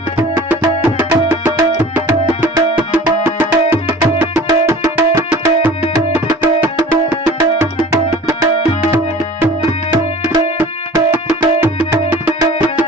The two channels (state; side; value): normal; both; correlation 0.43